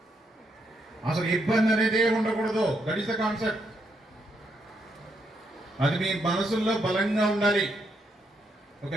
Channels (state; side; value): normal; both; correlation 0.77